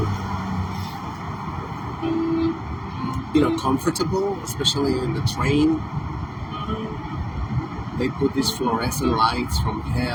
be, comfortable, especially in the train. They put these fluorescent lights from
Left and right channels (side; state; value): both; identical; correlation 1.00